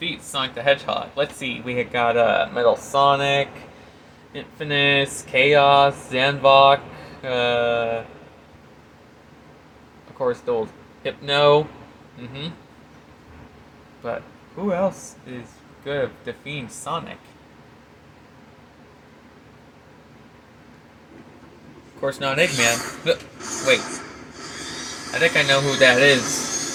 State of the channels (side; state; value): both; identical; correlation 1.00